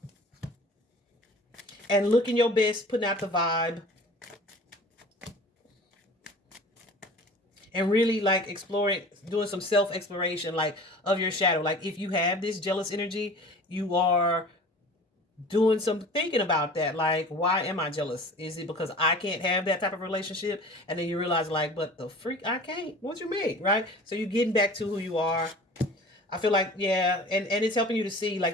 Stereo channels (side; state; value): both; normal; correlation 0.42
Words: and looking your best, putting out the vibe. And really like exploring, doing some self-exploration like of your shadow. Like if you have this jealous energy, you are doing some thinking about that. Like, why am I jealous? Is it because I can't have that type of relationship? And then you realize like, but the freak, I can't. What you mean, right? So you're getting back to who you are. I feel like, yeah, and it's helping you to see like